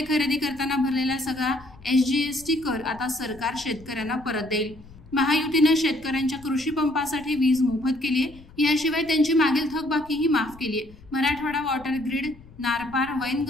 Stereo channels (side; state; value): left; noise; rumble, 22 dB below the sound